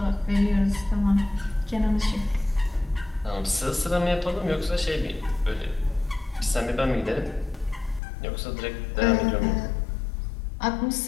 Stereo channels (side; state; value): right; drops out; at 8.0 s